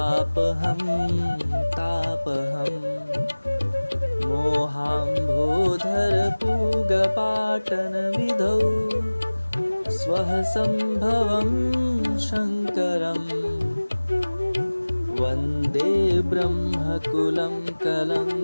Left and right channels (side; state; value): both; inverted; correlation -1.00